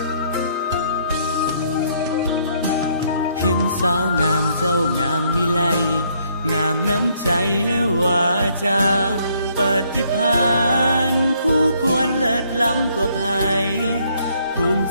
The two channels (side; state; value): both; inverted; correlation -0.68